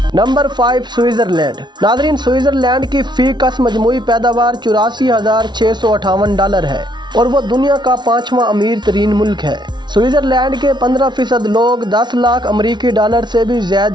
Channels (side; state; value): left; late; 0.21 ms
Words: Number 5 Switzerland. नाज़रीन, स्विट्जरलैंड की फी का मजमूई पैदावार $84,658 है और वो दुनिया का 5वां अमीर तरीन मुल्क है। स्विट्जरलैंड के 15% लोग $10 लाख अमरीकी डॉलर से भी